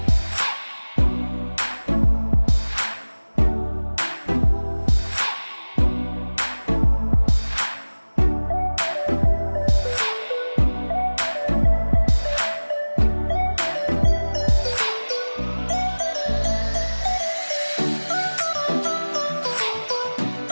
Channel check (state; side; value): inverted; both; correlation -1.00